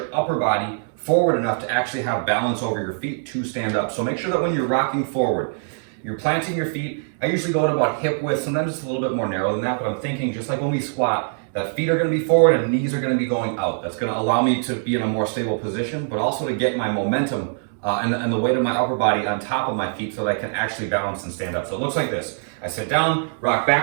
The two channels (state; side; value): silent; left; digital silence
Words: upper body forward enough to actually have balance over your feet to stand up. So make sure that when you're rocking forward, you're planting your feet. I usually go at about hip width, sometimes it's a little bit more narrow than that, but I'm thinking just like when we squat, that feet are gonna be forward and knees are gonna be going out. That's gonna allow me to be in a more stable position, but also to get my momentum and the weight of my upper body on top of my feet so that I can actually balance and stand up. So it looks like this. I sit down, rock